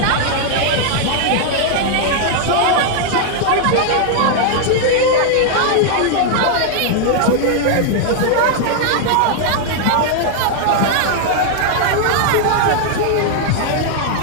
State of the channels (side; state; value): both; different; correlation 0.00